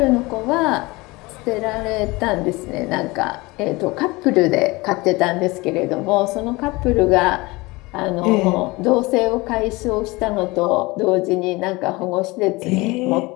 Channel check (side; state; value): right; quieter; 22.9 dB